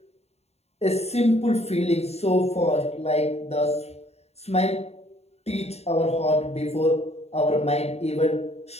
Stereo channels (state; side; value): late; right; 0.31 ms